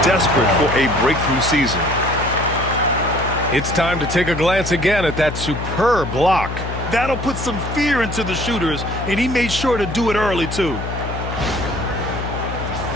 desperate for a breakthrough season. It's time to take a glance again at that superb block. That'll put some fear into the shooters, and he made sure to do it early, too.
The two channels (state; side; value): noise; left; hum, 6 dB below the sound